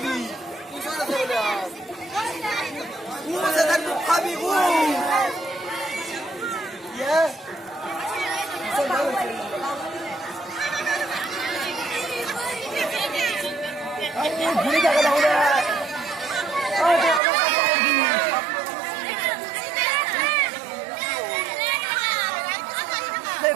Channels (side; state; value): left; drops out; at 17.2 s